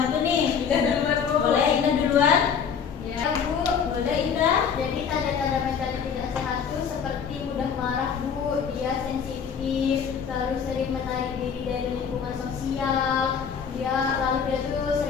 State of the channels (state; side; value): quieter; right; 7.0 dB